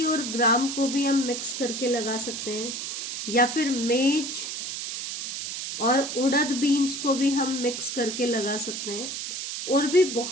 और ग्राम को भी हम मिक्स करके लगा सकते हैं, या फिर मेज और उड़द बीन्स को भी हम मिक्स करके लगा सकते हैं। और भी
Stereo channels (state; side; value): noise; right; hiss, 5 dB below the sound